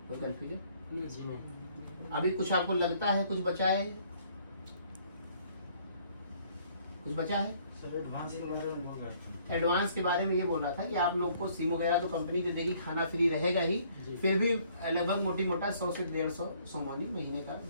कोई कन्फ्यूजन? अभी कुछ आपको लगता है कुछ बचा है? कुछ बचा है? एडवांस के बारे में ये बोल रहा था कि आप लोग को सिम वगैरह तो कंपनी दे देगी, खाना फ्री रहेगा ही, फिर भी लगभग मोटी मोटा 100 से 150 सोमानी महीने का,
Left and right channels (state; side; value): inverted; both; correlation -0.62